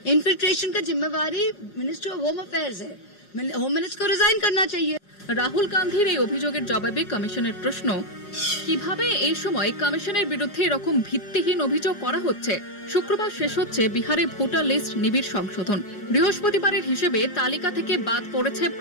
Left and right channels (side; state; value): right; late; 5.5 ms